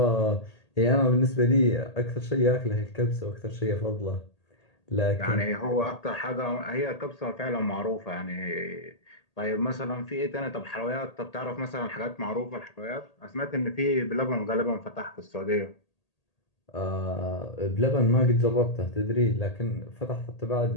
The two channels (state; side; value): late; right; 1.8 ms